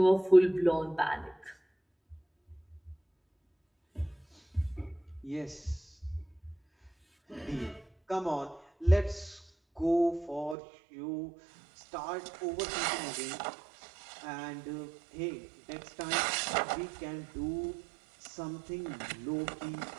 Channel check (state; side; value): drops out; left; at 10.6 s